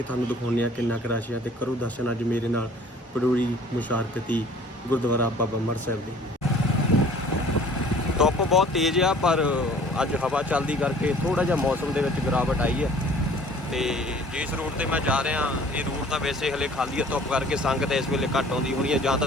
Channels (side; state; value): both; normal; correlation 0.51